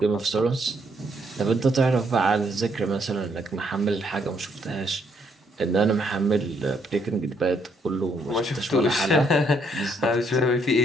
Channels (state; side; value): normal; both; correlation 0.71